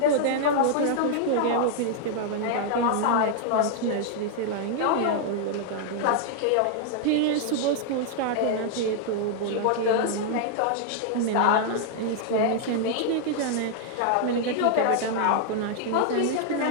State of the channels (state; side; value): different; both; correlation 0.00